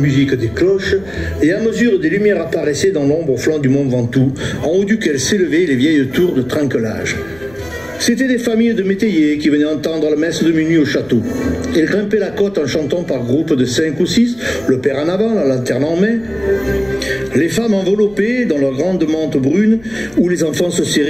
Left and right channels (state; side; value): noise; left; rumble, 24 dB below the sound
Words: des cloches, et à mesure des lumières apparaissaient dans l'ombre au flanc du mont Ventoux, en haut duquel s'élevaient les vieilles tours de Trinquelage. C'étaient des familles de métayers qui venaient entendre la messe de minuit au château. Ils grimpaient la côte en chantant par groupes de 5 ou 6, le père en avant, la lanterne en main. Les femmes enveloppées dans leurs grandes mantes brunes, où les enfants se